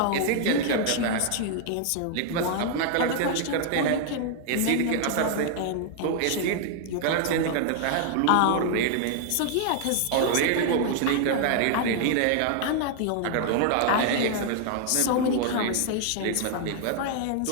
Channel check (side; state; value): both; different; correlation 0.00